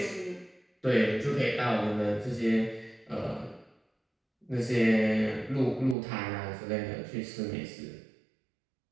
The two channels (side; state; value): left; drops out; at 6.0 s